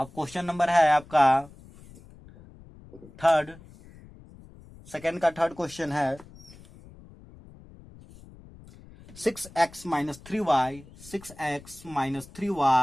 क्वेश्चन नंबर है आपका सेकंड का थर्ड क्वेश्चन है 6x minus 3y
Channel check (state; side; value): noise; left; rumble, 21 dB below the sound